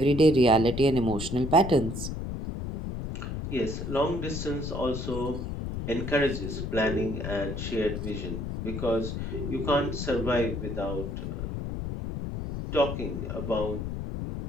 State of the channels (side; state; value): left; noise; rumble, 5 dB below the sound